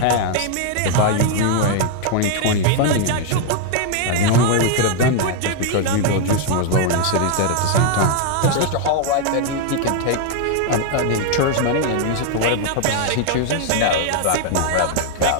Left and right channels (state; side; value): different; both; correlation 0.00